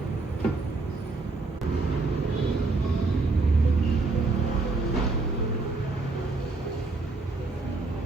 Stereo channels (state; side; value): quieter; left; 3.6 dB